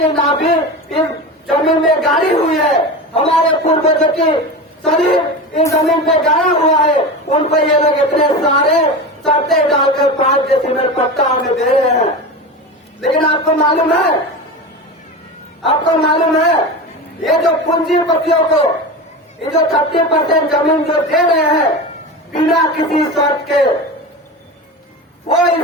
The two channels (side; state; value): both; normal; correlation 0.26